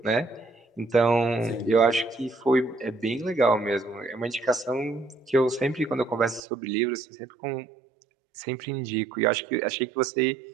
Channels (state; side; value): drops out; left; at 6.4 s